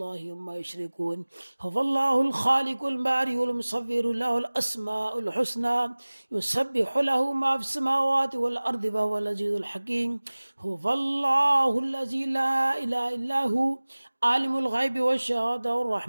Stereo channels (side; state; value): both; inverted; correlation -1.00